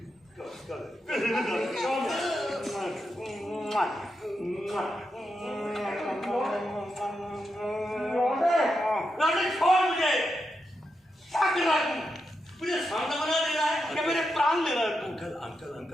छोड़ मुझे, क्या कर रहा है तू? मुझे सामने बना दे रहा है या मेरे प्राण ले रहा है तू?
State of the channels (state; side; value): normal; both; correlation 0.86